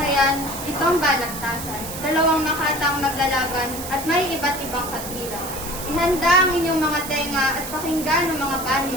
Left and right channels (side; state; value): right; noise; hiss, 9 dB below the sound